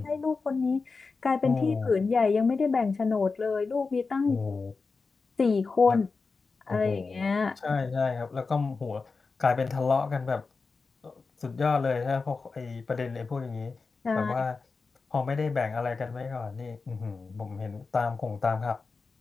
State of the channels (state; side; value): quieter; right; 4.4 dB